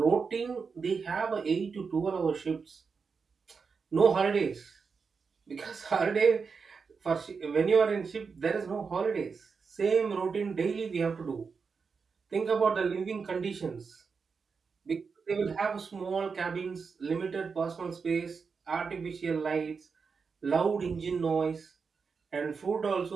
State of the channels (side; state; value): left; quieter; 5.3 dB